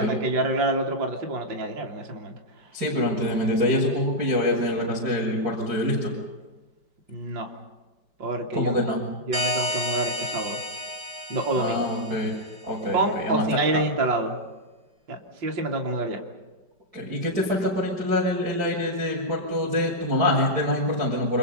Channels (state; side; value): late; left; 5.1 ms